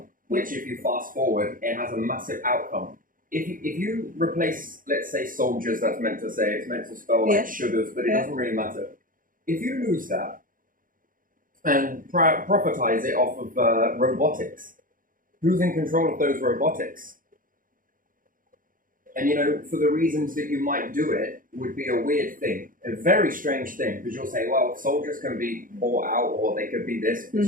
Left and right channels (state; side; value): late; left; 0.40 ms